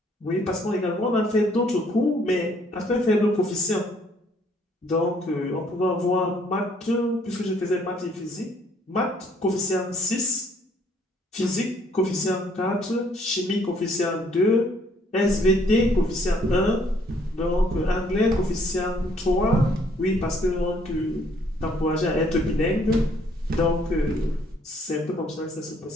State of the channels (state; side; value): normal; both; correlation 0.64